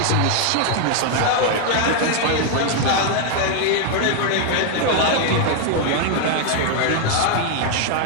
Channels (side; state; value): both; different; correlation 0.00